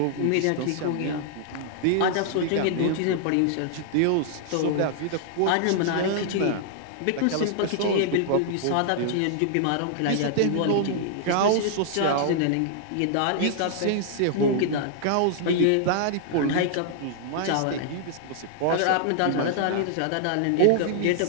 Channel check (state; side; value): different; both; correlation -0.01